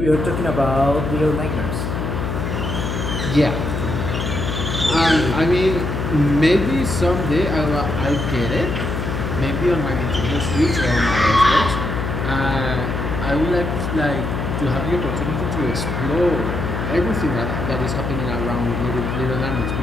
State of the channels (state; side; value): noise; left; hum, 3 dB below the sound